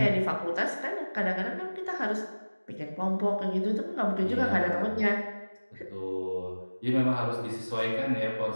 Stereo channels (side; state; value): both; inverted; correlation -1.00